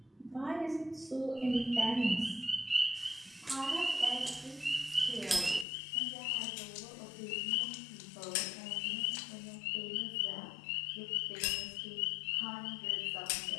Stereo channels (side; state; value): right; drops out; at 5.7 s